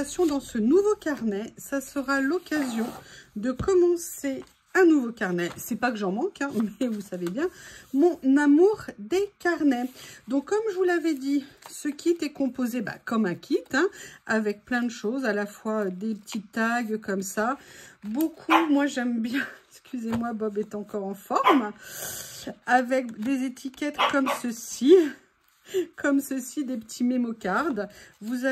dans ce nouveau carnet. Ça sera l'occasion de commencer un nouveau carnet. C'est pas que j'en manque, hein, mais vous savez bien, mon amour des carnets. Donc, comme je vous l'avais dit, ce kit est composé comme un kit, hein, avec plein de choses, à la fois des petits tags comme ça. Beaucoup, moi j'aime bien, excusez-moi, Bob est encore en forme, avec des étiquettes comme ceci. Comme ceci, des petits mémo cards. Vous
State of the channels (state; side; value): identical; both; correlation 1.00